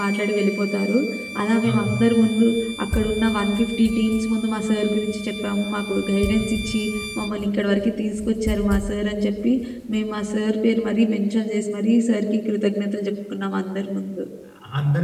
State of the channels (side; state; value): both; identical; correlation 1.00